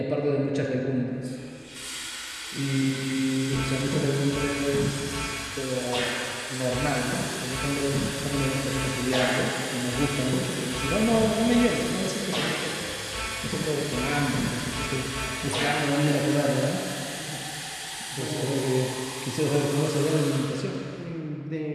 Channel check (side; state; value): both; identical; correlation 1.00